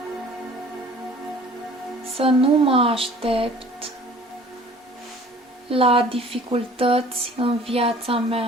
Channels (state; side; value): normal; both; correlation 0.50